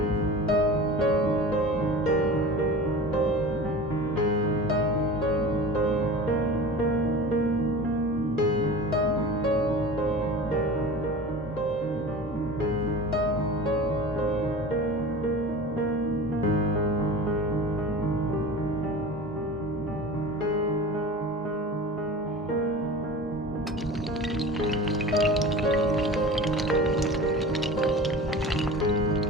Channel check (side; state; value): both; normal; correlation 0.36